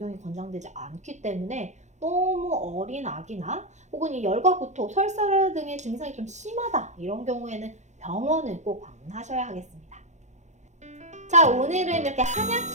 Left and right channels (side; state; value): left; late; 0.34 ms